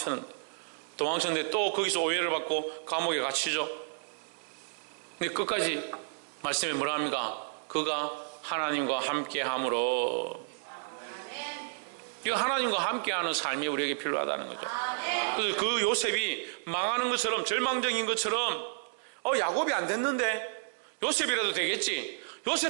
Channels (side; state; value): left; silent; digital silence